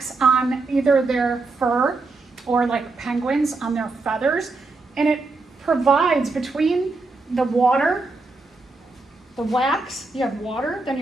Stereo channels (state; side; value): quieter; left; 3.6 dB